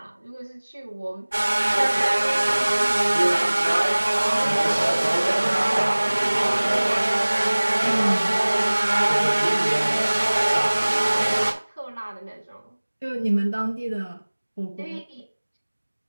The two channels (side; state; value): both; inverted; correlation -1.00